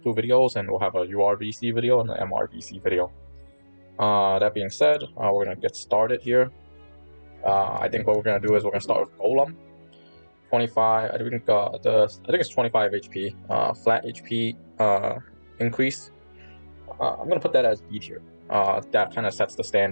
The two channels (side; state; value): both; inverted; correlation -1.00